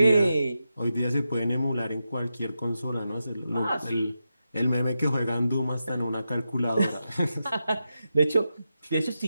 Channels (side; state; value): both; inverted; correlation -0.88